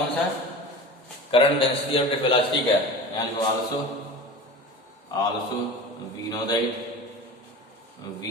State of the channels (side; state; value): both; normal; correlation 0.34